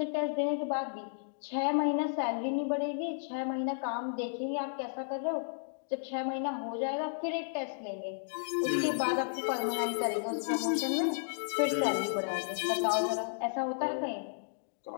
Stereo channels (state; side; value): silent; right; digital silence